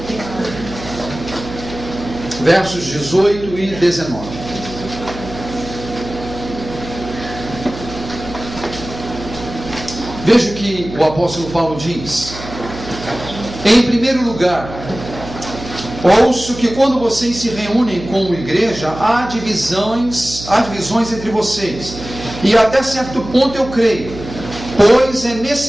versos 18 e 19. Veja o que o apóstolo Paulo diz. Em primeiro lugar, ouço que quando vocês se reúnem como igreja, há divisões entre vocês. E até certo ponto eu creio, pois é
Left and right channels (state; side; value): noise; right; hum, 12 dB below the sound